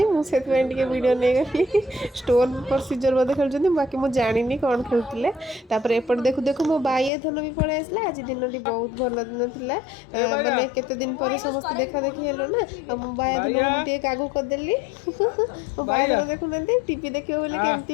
मुझे वीडियो नहीं गली स्टोन प्रोसीजर बोधे खेलुँच बाकी मुझे जानी कौन खेलुले एपटे देखु देखु मो बाइया धन भी पड़े आसला आज दिन टी बहुत भल दिन थिला माने केते दिन पर समस्त देखा देखी हेलो ना आ मो बाइया धन को मुझे आगू करदेली मो बाइया धन देखु ना टीवी देखियो बोले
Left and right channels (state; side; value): drops out; right; at 7.1 s